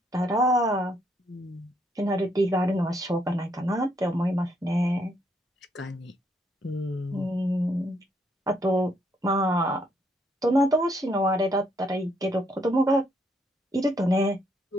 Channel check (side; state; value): both; normal; correlation 0.72